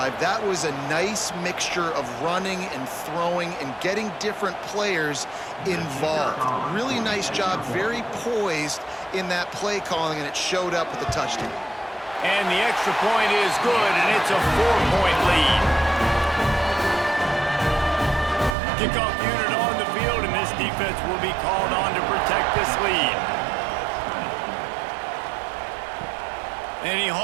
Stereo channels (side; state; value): left; drops out; at 18.6 s